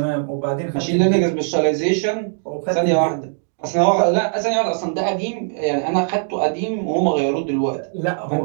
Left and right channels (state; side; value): silent; left; digital silence